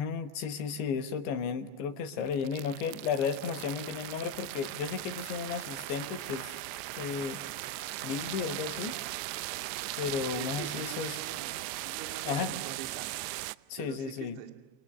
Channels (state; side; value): late; right; 15 ms